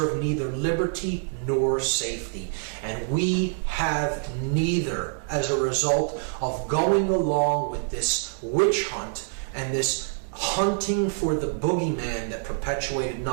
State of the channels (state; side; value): silent; left; digital silence